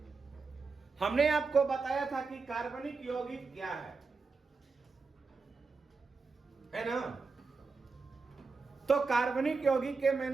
हमने आपको बताया था कि कार्बनिक यौगिक क्या है ना। तो कार्बनिक यौगिक के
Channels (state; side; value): quieter; left; 4.4 dB